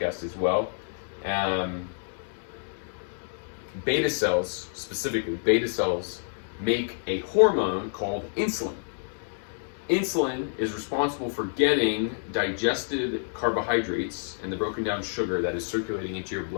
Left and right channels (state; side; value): silent; right; digital silence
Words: as well. Beta cells, specifically beta cells, make a hormone called insulin. Insulin is responsible for getting digested carbohydrates and the broken down sugar that is circulating into your